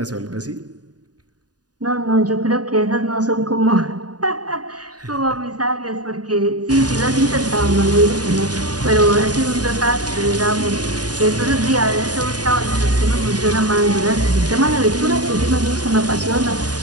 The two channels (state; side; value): late; left; 0.68 ms